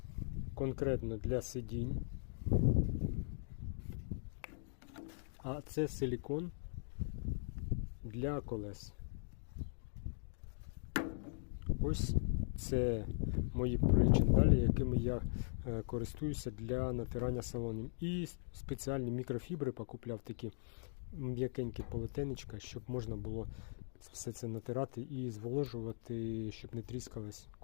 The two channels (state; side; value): silent; right; digital silence